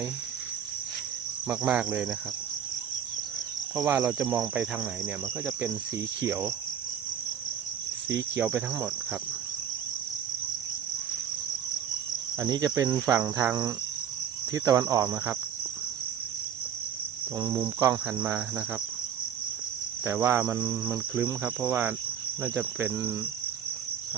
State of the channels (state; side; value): quieter; left; 8.6 dB